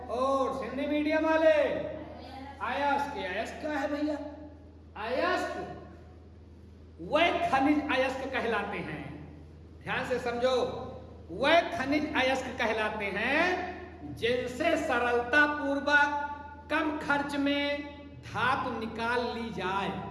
ओर्स। हिंदी मीडियम वाले अयस्क। अयस्क क्या है भैया, अयस्क वह खनिज अयस्क कहलाते हैं। ध्यान से समझो, वह खनिज अयस्क कहलाते हैं जिनसे सरलता पूर्वक कम खर्च में धातु निकाल ली जाए।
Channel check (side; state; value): both; identical; correlation 1.00